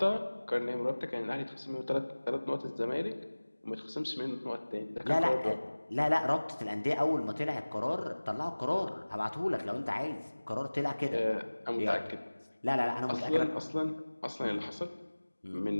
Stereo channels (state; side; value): inverted; both; correlation -1.00